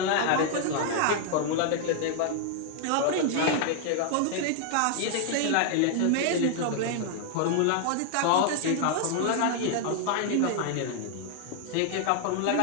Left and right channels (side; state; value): both; different; correlation 0.00